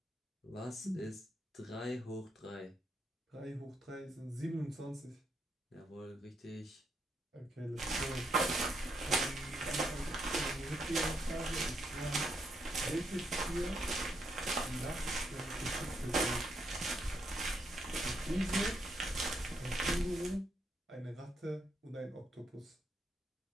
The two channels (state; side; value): normal; both; correlation 0.78